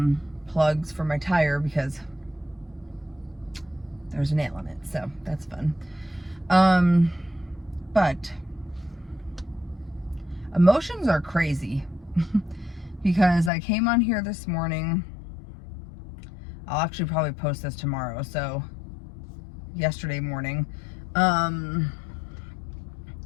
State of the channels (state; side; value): drops out; right; at 13.5 s